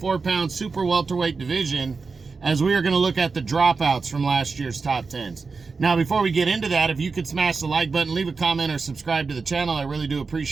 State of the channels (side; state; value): left; quieter; 4.5 dB